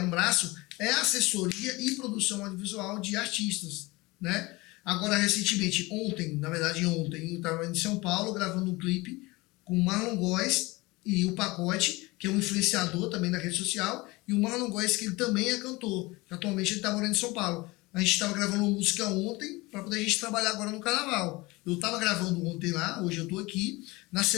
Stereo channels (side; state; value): right; quieter; 22.6 dB